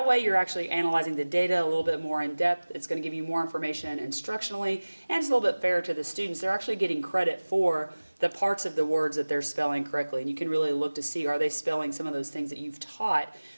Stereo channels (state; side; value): inverted; both; correlation -1.00